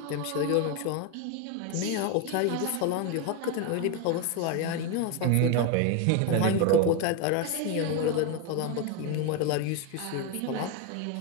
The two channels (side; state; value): both; different; correlation 0.02